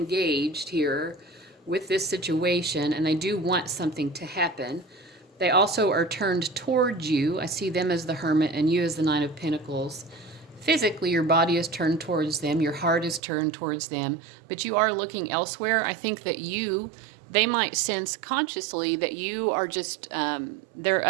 here with this situation, and they do want something to happen. They also are turned towards you. I see them as the Hermit and you as the Nine of Pentacles. Physically, your body is turned towards them. Your heart is turned towards them. But you are looking elsewhere. I think that they might sense consciously that you are just, there are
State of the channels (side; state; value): left; drops out; at 13.2 s